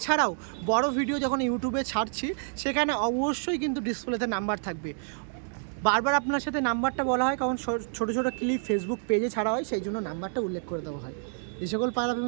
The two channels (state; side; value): silent; left; 59 dB below the other